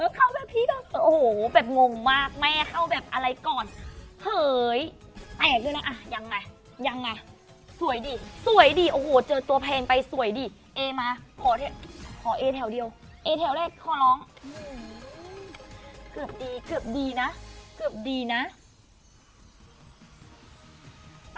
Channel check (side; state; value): both; identical; correlation 1.00